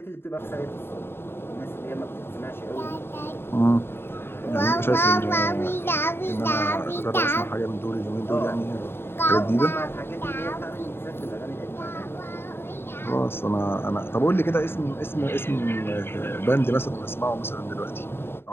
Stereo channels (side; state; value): right; late; 0.11 ms